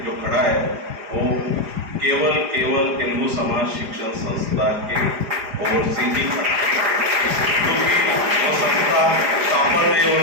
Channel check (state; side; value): late; left; 4.9 ms